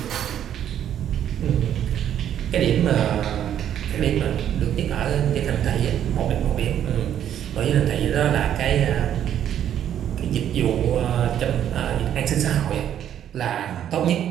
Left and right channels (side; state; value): left; quieter; 10.2 dB